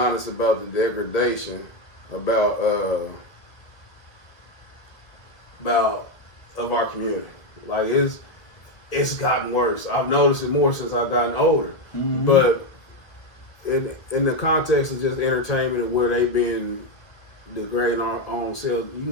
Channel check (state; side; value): late; right; 1.8 ms